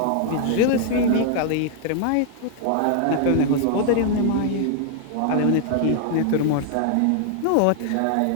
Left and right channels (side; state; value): both; different; correlation 0.00